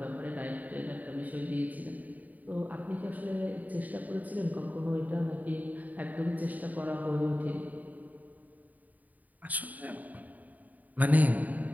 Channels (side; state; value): left; late; 0.077 ms